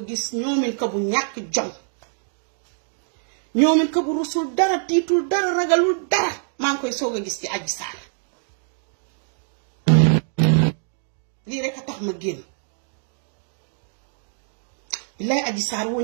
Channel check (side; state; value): left; silent; digital silence